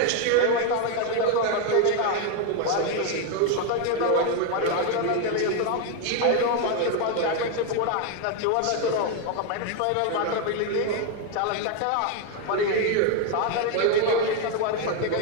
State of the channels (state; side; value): different; both; correlation 0.01